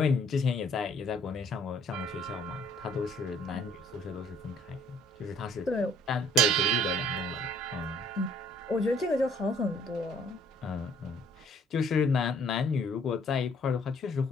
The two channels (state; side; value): normal; both; correlation 0.60